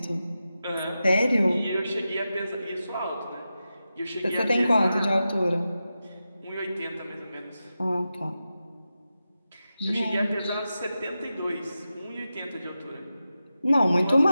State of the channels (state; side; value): inverted; both; correlation -0.91